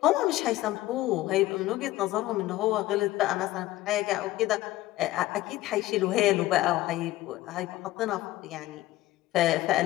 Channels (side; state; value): right; quieter; 16.5 dB